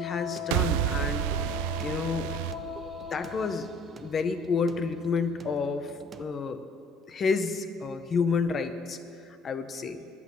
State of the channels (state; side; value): normal; both; correlation 0.52